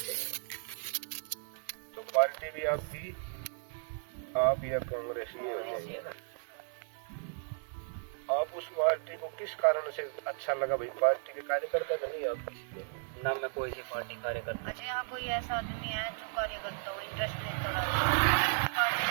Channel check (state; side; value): silent; left; digital silence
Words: तो पार्टी भी आपकी, आप या कांग्रेस ही हो, आप उस पार्टी को किस कारण से अच्छा लगा? भाई पार्टी के कार्यकर्ता तो नहीं आप किसी के? ना मैं कोई सी पार्टी कार्यकर्ता। अच्छा, यहाँ कोई ऐसा आदमी है जो कार्यकर्ता हो, इंटरेस्ट लेता है,